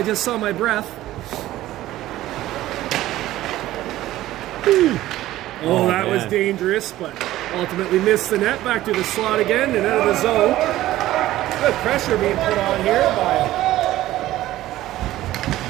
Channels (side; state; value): left; quieter; 15.1 dB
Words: just saw my breath. Oh, that was dangerous, but ultimately missed the net. Back to the slot again and out of the zone. Good pressure being put on here by